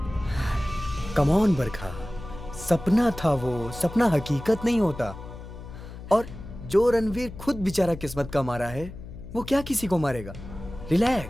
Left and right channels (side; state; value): left; noise; hum, 13 dB below the sound